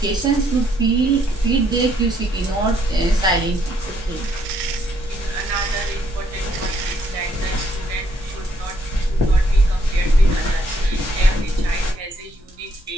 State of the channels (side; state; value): both; normal; correlation 0.71